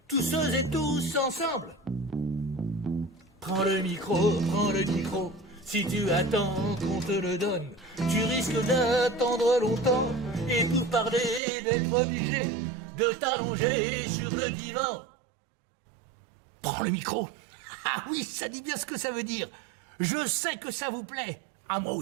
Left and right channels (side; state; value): left; drops out; at 11.4 s